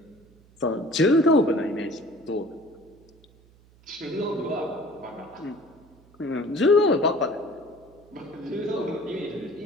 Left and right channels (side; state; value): right; noise; hum, 28 dB below the sound